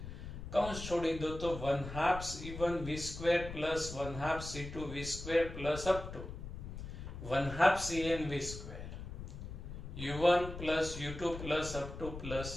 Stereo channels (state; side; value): noise; left; rumble, 9 dB below the sound